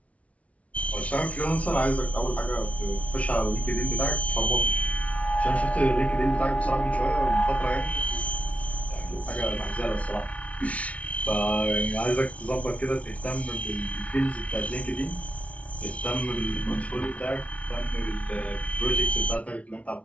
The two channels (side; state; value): right; late; 0.065 ms